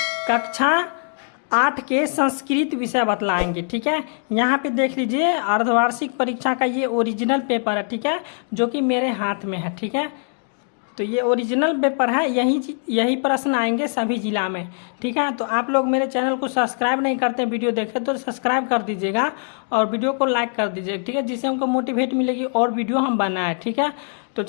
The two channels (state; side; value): silent; right; 57 dB below the other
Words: कक्षा 8 के संस्कृत विषय बतलाएंगे। ठीक है, यहाँ पे देख लीजिए अर्धवार्षिक परीक्षा का ये ओरिजिनल पेपर है। ठीक है, जो कि मेरे हाथ में है। ठीक है, तो ये ओरिजिनल पेपर है, यही प्रश्न आएंगे सभी जिला में। ठीक है, तो आप लोग मेरे चैनल को सब्सक्राइब नहीं करते वीडियो देखे तो सब्सक्राइब कर दीजिएगा और वीडियो को लाइक कर दीजिएगा। ठीक है, जिससे हमको मोटिवेट मिलेगी और वीडियो हम बनाए। ठीक है, तो